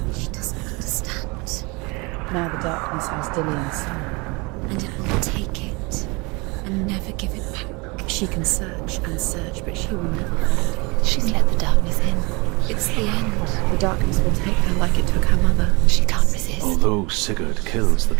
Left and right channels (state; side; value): quieter; left; 27.1 dB